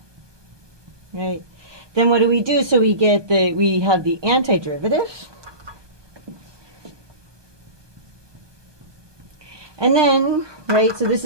right? Then what do we do? So we have the antiderivative. And then, right, so this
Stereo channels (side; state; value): left; late; 1.2 ms